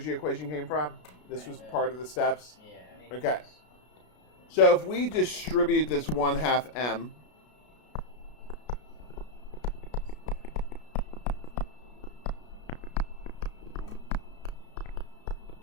equation came from? This was part of the steps? Yeah. Okay. So if we distribute this 1/2 m,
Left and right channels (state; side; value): late; right; 33 ms